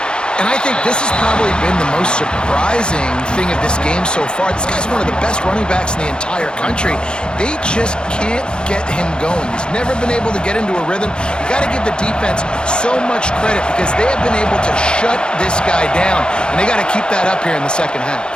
And I think this has probably been the most surprising thing of this game so far. This guy's one of the best running backs in the entire country. They just can't get him going. He's never been able to get into a rhythm. You got to give the defense so much credit because they have been able to shut this guy down, and they got to keep that up here in the second half.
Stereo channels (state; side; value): late; right; 0.050 ms